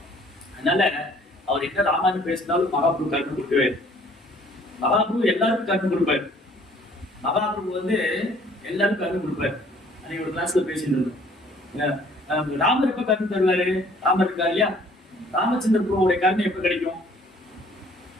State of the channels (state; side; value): normal; both; correlation 0.57